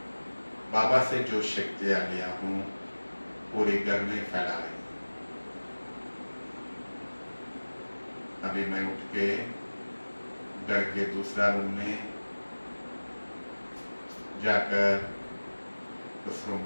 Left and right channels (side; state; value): both; inverted; correlation -1.00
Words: बाबा से जो शक्तियां लिया हूं पूरे घर में फैला रही हूं। अभी मैं उठ के घर के दूसरा रूम में जाकर उस रूम